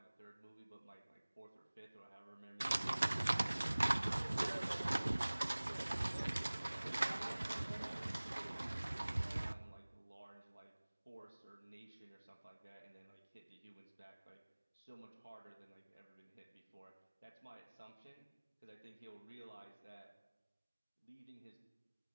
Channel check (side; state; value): both; inverted; correlation -1.00